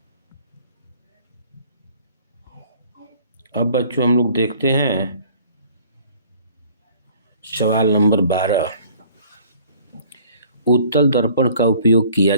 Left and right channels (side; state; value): both; inverted; correlation -0.54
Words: अब बच्चों हम लोग देखते हैं सवाल नंबर 12। उत्तल दर्पण का उपयोग किया